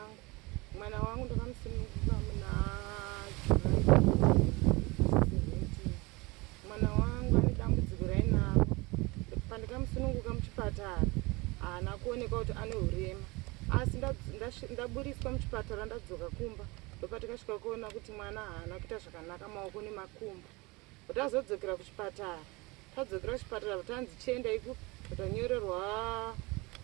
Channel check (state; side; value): quieter; left; 24.6 dB